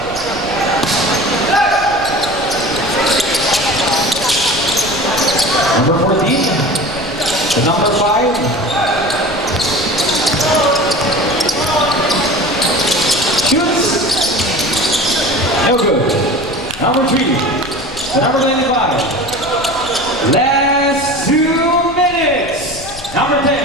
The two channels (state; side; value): noise; left; rumble, 17 dB below the sound